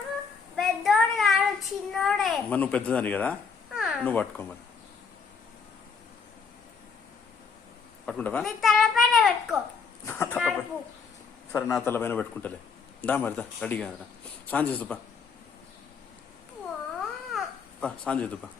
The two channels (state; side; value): quieter; right; 5.4 dB